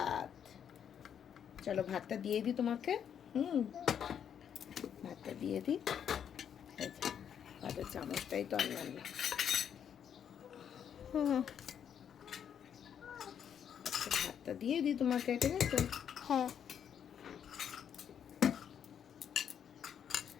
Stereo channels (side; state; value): right; quieter; 8.5 dB